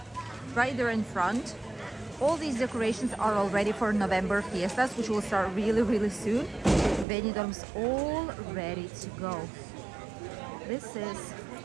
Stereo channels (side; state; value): left; drops out; at 7.1 s